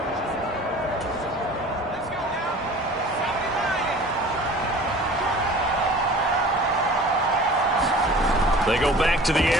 They go back to the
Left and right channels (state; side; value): normal; both; correlation 0.44